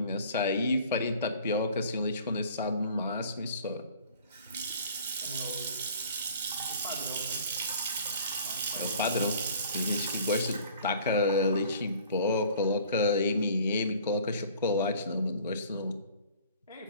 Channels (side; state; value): both; inverted; correlation -0.49